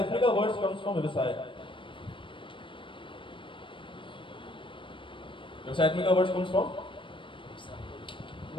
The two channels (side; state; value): right; late; 0.25 ms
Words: वर्ड्स कम्स फ्रॉम व्यवसाय। व्यवसायत्मिका वर्ड्स कम्स फ्रॉम,